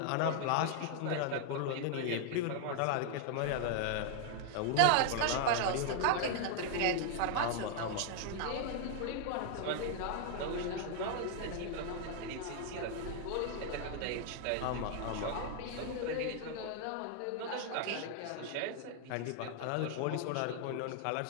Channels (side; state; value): both; different; correlation 0.00